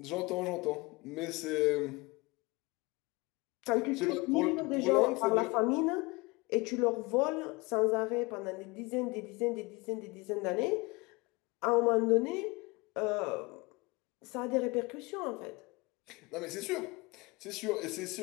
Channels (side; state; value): right; quieter; 24.9 dB